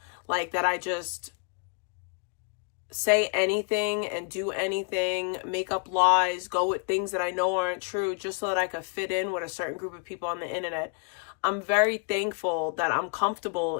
Like, that I just say anything and do anything, make up lies, go with things that I know aren't true just so that I could fit in with a certain group of people on the internet. I'm very thankful that I'm comfortable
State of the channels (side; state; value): right; quieter; 39.2 dB